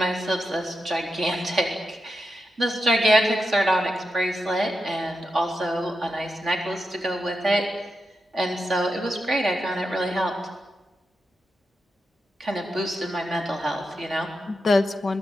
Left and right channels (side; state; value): both; normal; correlation 0.87